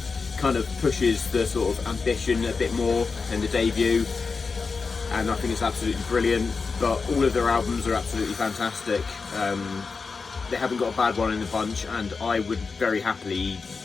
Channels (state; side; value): quieter; right; 4.7 dB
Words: kind of pushes the sort of ambition a bit more than the debut, and I think it's absolutely brilliant. But all of their albums are absolutely fantastic. They haven't got a bad one in the bunch, and I would very happily